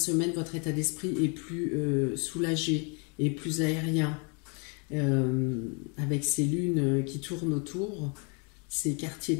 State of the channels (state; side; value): quieter; right; 34.4 dB